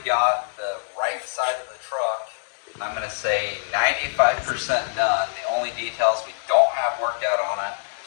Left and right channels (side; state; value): right; silent; digital silence